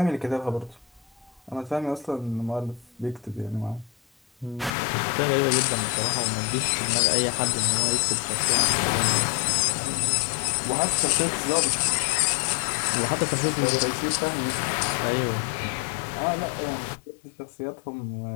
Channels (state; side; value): drops out; right; at 4.7 s